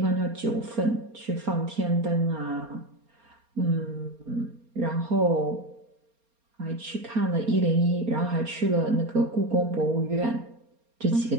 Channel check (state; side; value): late; left; 4.3 ms